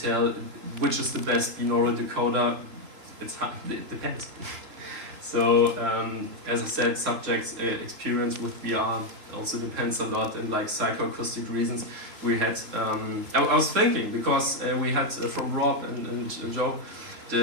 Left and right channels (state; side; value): late; left; 3.4 ms